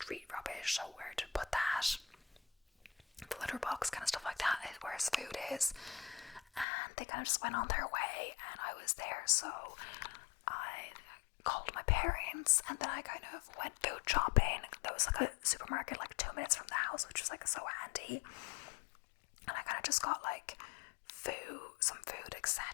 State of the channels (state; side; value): drops out; right; at 6.7 s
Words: rubbish, so where to put that. The litter box, kind of stuff like that, is where his food is. And they kind of just went on their way, and I was there, so I called my parents, and then I kind of went food shopping. There was like a supermarket like 2 minutes from the house, which was like so handy. And I kind of just got like some food,